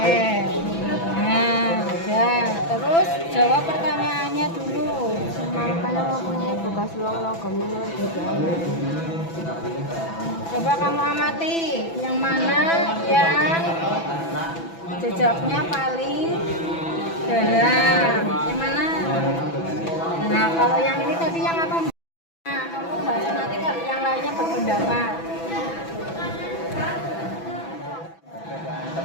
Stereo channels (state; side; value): late; right; 6.0 ms